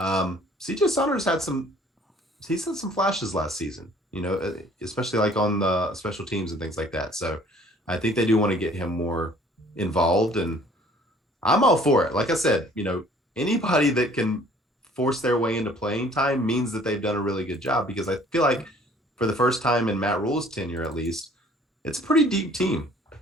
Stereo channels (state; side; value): normal; both; correlation 0.55